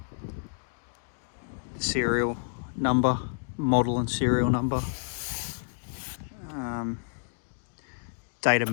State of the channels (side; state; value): right; silent; digital silence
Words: serial number, model and serial number. Date of